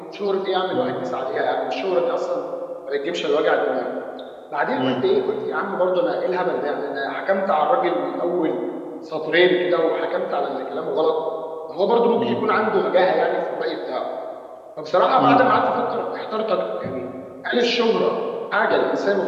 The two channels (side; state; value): both; identical; correlation 1.00